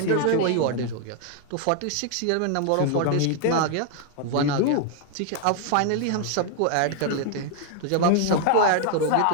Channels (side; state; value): both; different; correlation 0.00